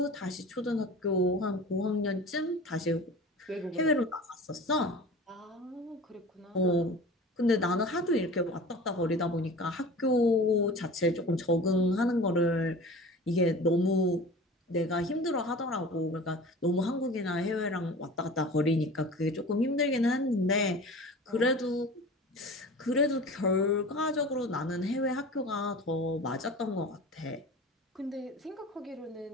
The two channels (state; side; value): normal; both; correlation 0.38